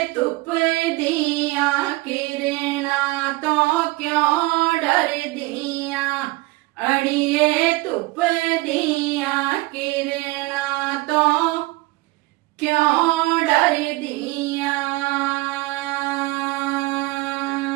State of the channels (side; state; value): left; quieter; 21.5 dB